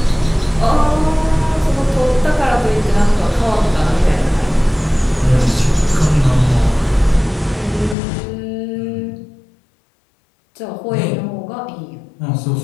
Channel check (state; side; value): drops out; right; at 8.0 s